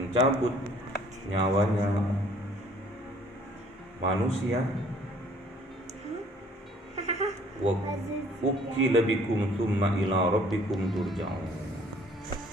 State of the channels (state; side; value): normal; both; correlation 0.57